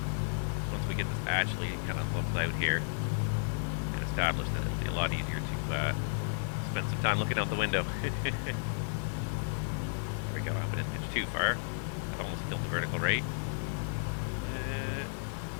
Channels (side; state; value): right; silent; 56 dB below the other